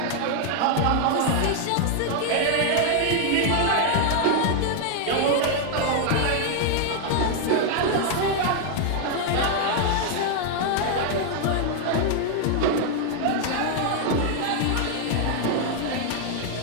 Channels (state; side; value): different; both; correlation 0.00